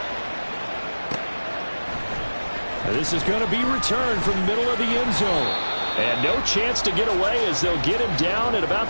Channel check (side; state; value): both; inverted; correlation -1.00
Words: This is going to be returned from the middle of the end zone. And no chance to get away, as they'll get him down at